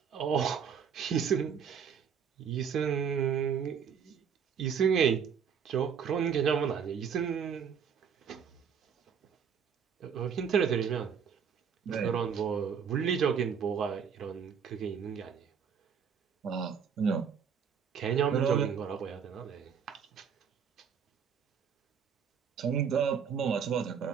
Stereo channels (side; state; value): left; quieter; 7.1 dB